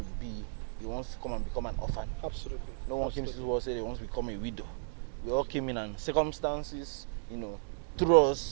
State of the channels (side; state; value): left; silent; digital silence